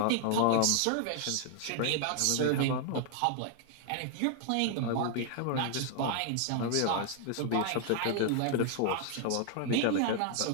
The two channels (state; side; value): different; both; correlation 0.00